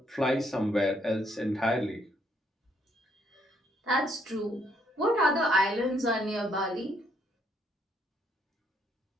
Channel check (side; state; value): both; normal; correlation 0.70